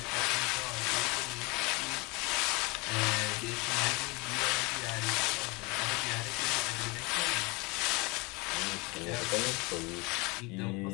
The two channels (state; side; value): quieter; right; 26.8 dB